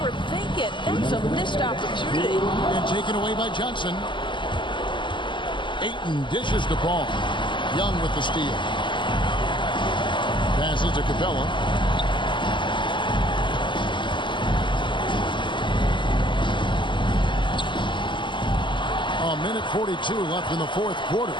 it? That's a missed opportunity. And taken away by Johnson. Ayton dishes to Paul. Young with the steal. Passes to Capella. A minute 42 left in the fourth quarter.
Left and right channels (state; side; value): late; right; 0.23 ms